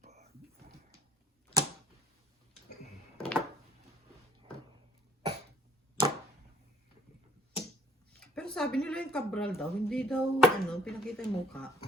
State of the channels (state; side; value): normal; both; correlation 0.56